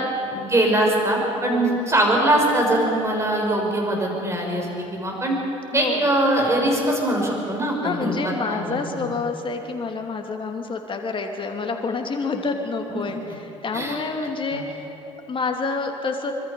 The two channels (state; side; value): normal; both; correlation 0.49